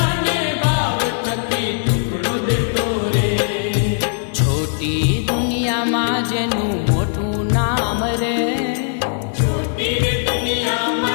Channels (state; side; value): silent; right; digital silence